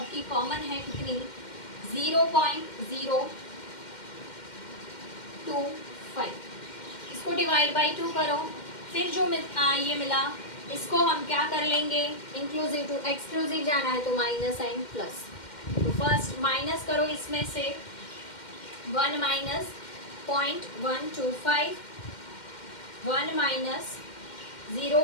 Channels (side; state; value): right; late; 2.1 ms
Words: कॉमन है. कितनी? 0.025. इसको डिवाइड बाई 2 करो, फिर जो ये मिला इसको हम क्या कर लेंगे? इंक्लूसिव टू एक्सक्लूसिव जाना है तो माइनस एंड प्लस. तो फर्स्ट माइनस करो इसमें से 1 माइनस 0.125, 1 माइनस